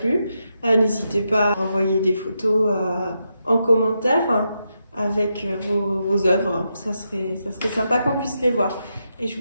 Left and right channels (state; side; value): inverted; both; correlation -0.85